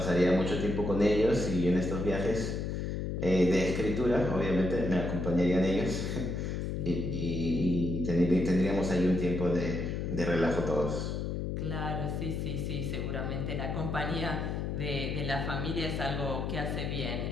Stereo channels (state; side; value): noise; left; hum, 2 dB below the sound